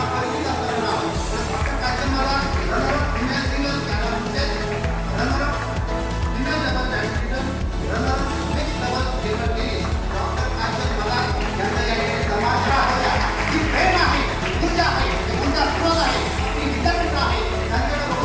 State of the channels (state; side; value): identical; both; correlation 1.00